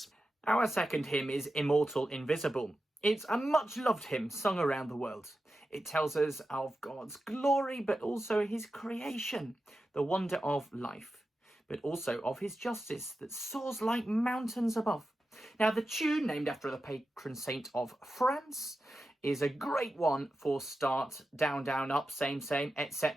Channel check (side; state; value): both; normal; correlation 0.91